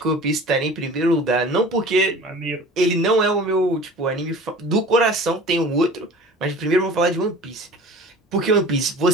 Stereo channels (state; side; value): normal; both; correlation 0.41